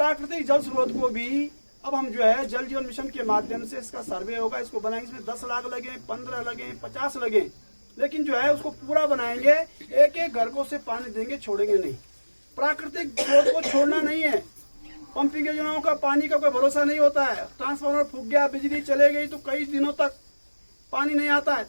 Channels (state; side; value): inverted; both; correlation -1.00